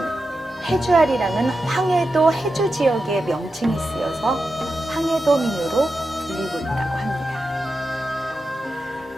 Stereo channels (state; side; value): normal; both; correlation 0.90